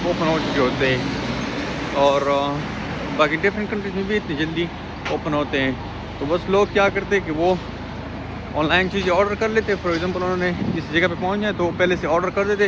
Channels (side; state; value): both; identical; correlation 1.00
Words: ओपन हो चुके होते हैं। और बाकी डिफरेंट कंट्रीज में भी इतनी जल्दी ओपन होते हैं। तो बस लोग क्या करते हैं कि वो ऑनलाइन चीज़ें ऑर्डर कर लेते हैं। फॉर एग्जांपल उन्होंने जिस जगह पे पहुंच जाए तो पहले से ऑर्डर कर देते